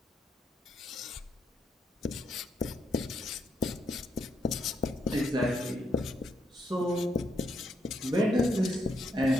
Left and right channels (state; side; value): normal; both; correlation 0.77